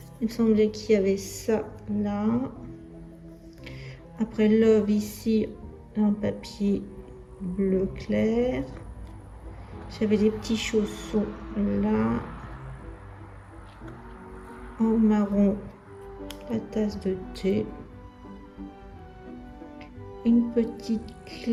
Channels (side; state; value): both; identical; correlation 1.00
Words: il me semblait qu'il y avait ça là. Après love ici en papier bleu clair. J'avais des petits chaussons là en marron, la tasse de thé, une petite